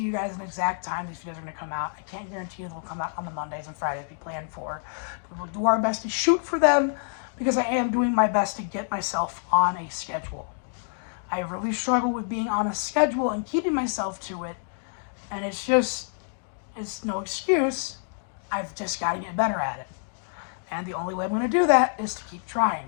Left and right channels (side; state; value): right; silent; 60 dB below the other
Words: you guys an exact time these videos are going to come out. I can't guarantee you they'll come out on the Mondays and Fridays we planned for. But we'll do our best to shoot for them because I am doing my best to get myself on a schedule. I really struggle with being on a schedule and keeping myself to it. And it's no excuse. I've just got to get better at it. And the only way I'm going to do that is to keep